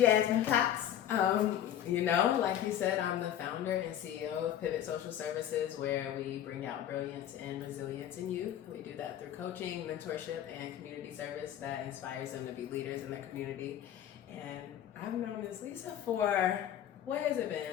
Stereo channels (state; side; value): quieter; right; 10.7 dB